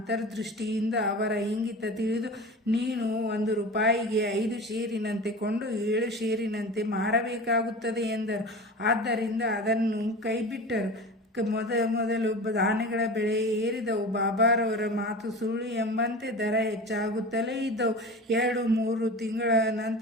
ಅವರ ಇಂಗಿತ ತಿಳಿದು, ನೀನು 1 ರೂಪಾಯಿಗೆ 5 ಶೇರಿನಂತೆ ಕೊಂಡು 7 ಶೇರಿನಂತೆ ಮಾರಬೇಕಾಗುತ್ತದೆ ಎಂದರು. ಆದ್ದರಿಂದ ಅದನ್ನು ಕೈಬಿಟ್ಟರು. ಮೊದಲು ಧಾನ್ಯಗಳ ಬೆಲೆ ಏರಿದವು. ಬಾಬಾರವರ ಮಾತು ಸುಳ್ಳು ಎಂಬಂತೆ ದರ ಹೆಚ್ಚಾಗುತ್ತಲೇ ಇದ್ದವು. 2-3 ತಿಂಗಳ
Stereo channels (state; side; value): normal; both; correlation 0.32